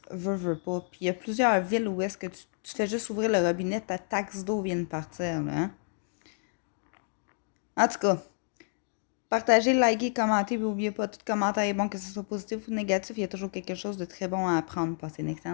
veux pas. Puis il y a plusieurs villes où est-ce que tu fais juste ouvrir le robinet, ta taxe d'eau vient de partir, là. Hein? En tout cas, partagez, likez, commentez, puis n'oubliez pas, tout commentaire est bon, que ce soit positif ou négatif, il y a toujours quelque chose de très bon à apprendre. Passez une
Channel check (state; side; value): silent; right; digital silence